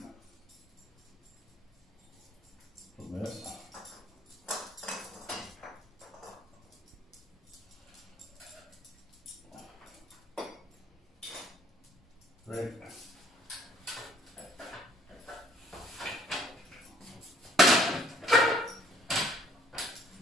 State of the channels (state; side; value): normal; both; correlation 0.59